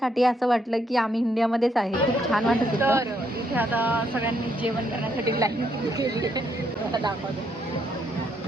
असं वाटलं की आम्ही इंडियामध्येच आहे. खूप छान वाटत होतं. तर इथे आता सगळ्यांनी जेवण करण्यासाठी लाईन केली आहे. दाखवतो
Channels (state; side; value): normal; both; correlation 0.74